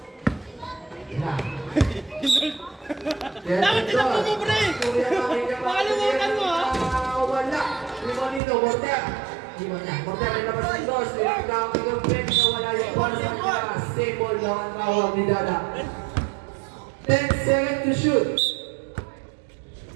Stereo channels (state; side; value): drops out; left; at 8.4 s